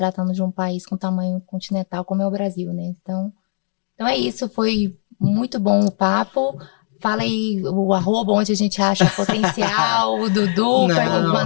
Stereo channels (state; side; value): silent; right; 63 dB below the other